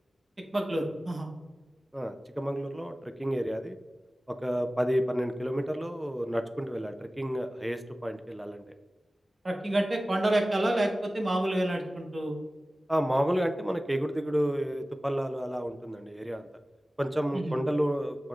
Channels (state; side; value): normal; both; correlation 0.97